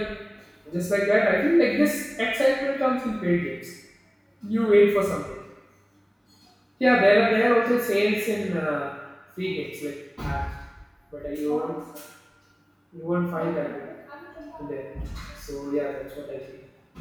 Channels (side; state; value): both; identical; correlation 1.00